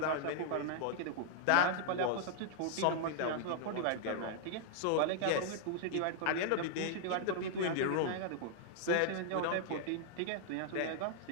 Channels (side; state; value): both; different; correlation -0.01